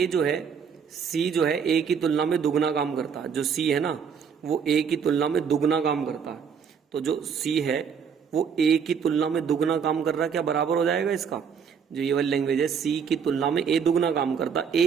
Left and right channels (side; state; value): left; quieter; 6.8 dB